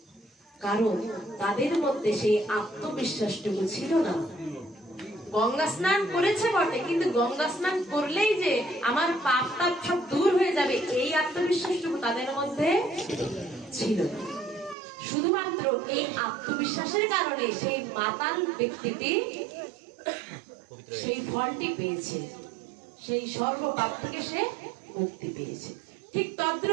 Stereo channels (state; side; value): drops out; left; at 14.8 s